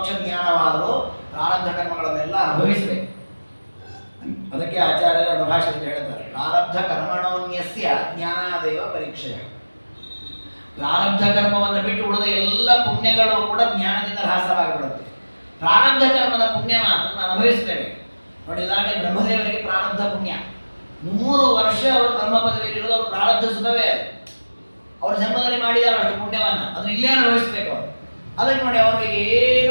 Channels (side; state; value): both; inverted; correlation -1.00